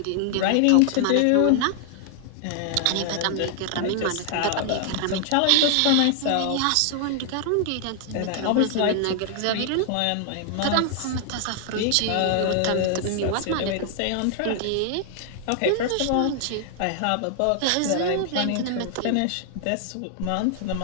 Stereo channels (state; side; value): different; both; correlation 0.00